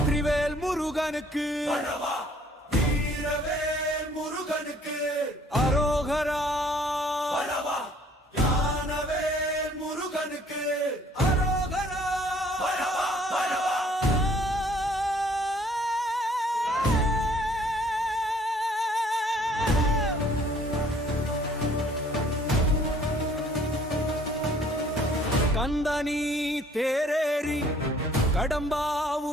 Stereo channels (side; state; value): both; normal; correlation 0.58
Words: முருகனுக்கு வீரவேல் முருகனுக்கு அரோகரா ஞானவேல் முருகனுக்கு அரோகரா கந்தனி தேரேறி